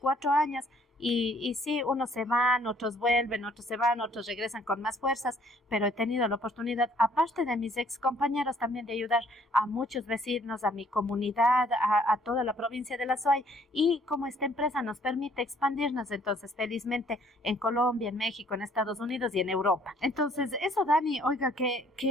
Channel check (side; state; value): both; normal; correlation 0.61